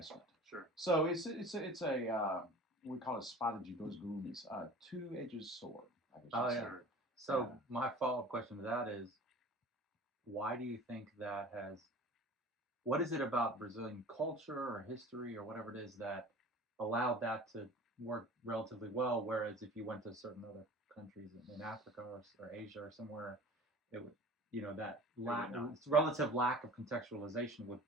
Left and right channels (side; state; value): both; normal; correlation 0.42